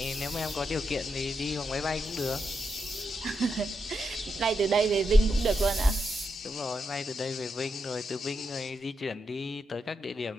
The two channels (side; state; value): both; normal; correlation 0.84